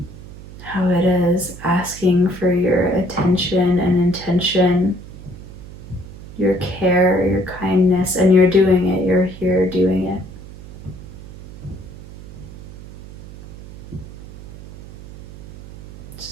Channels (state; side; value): noise; right; hum, 15 dB below the sound